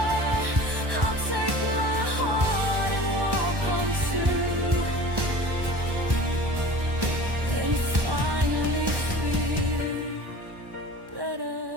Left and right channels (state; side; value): late; left; 1.1 ms